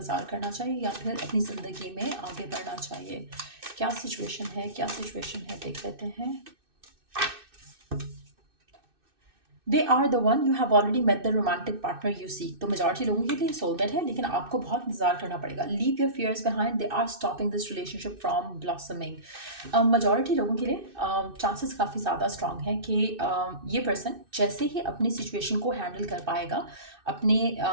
करना चाहिए, या फिर अपनी ज़िंदगी में आगे बढ़ना चाहिए? क्या सिचुएशन है, क्या सिचुएशन है, देख लेते हैं। They are the one, you have already met the romantic partner you seek. तो मेजॉरिटी लोगों के लिए सोलमेट है, लेकिन आपको बहुत इंतजार करना पड़ेगा। Leave your fears behind, they are stopping this relationship from blossoming. Majority लोगों के लिए चांसेस काफ़ी ज़्यादा स्ट्रांग हैं कि ये पर्सन जैसे ही अपनी सिचुएशन को हैंडल कर पाएगा, अपने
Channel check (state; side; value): late; left; 2.6 ms